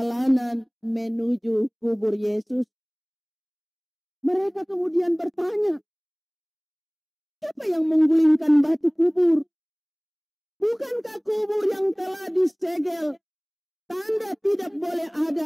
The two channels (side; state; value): both; identical; correlation 1.00